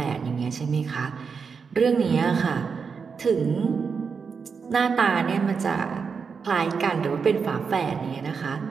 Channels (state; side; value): quieter; left; 5.7 dB